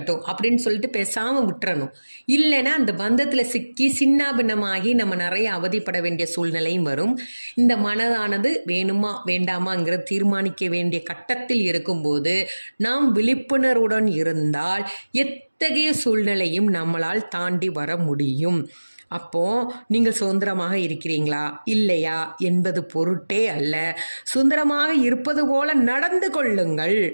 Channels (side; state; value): both; inverted; correlation -1.00